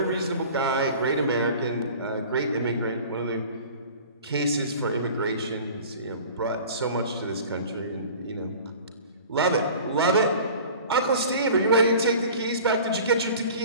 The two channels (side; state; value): both; inverted; correlation -0.43